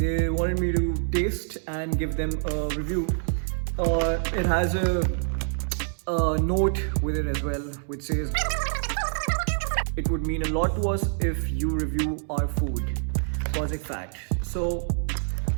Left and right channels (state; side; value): silent; left; 59 dB below the other